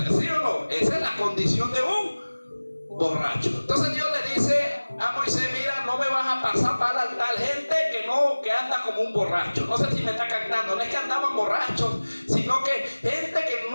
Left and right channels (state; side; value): inverted; both; correlation -1.00